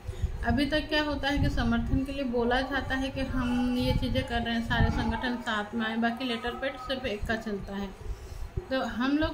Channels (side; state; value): both; identical; correlation 1.00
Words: अभी तक क्या होता है कि समर्थन के लिए बोला जाता है कि हम ये चीज़ें कर रहे हैं, सारे संगठन साथ में आए, बाकी लेटर पैड सिर्फ एक का चलता है। तो हम